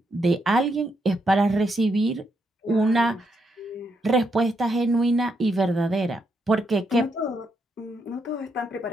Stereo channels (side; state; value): both; normal; correlation 0.79